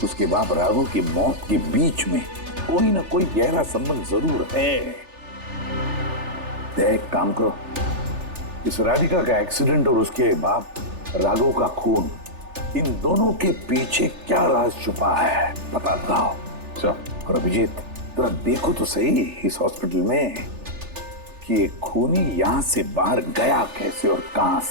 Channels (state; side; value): late; left; 3.4 ms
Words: उसके बाप राघव की मौत के बीच में कोई ना कोई गहरा संबंध जरूर है। एक काम करो, इस राधिका का एक्सीडेंट और उसके बाप राघव का खून, इन दोनों के पीछे क्या राज छुपा है पता लगाओ। और अभिजीत, जरा देखो तो सही इस हॉस्पिटल में कि ये खूनी यहां से बाहर गया कैसे और कहां